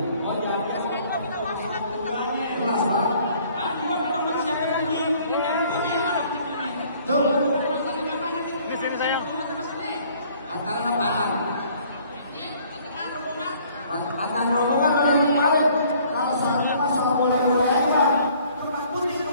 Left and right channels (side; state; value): both; inverted; correlation -0.58